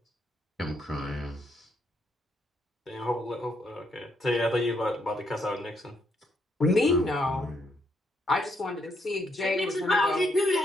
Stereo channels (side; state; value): both; normal; correlation 0.75